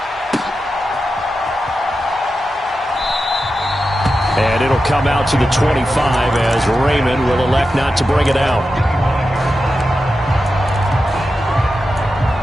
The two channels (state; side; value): normal; both; correlation 0.90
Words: And it'll come out to the 25 as Raymond will elect not to bring it out.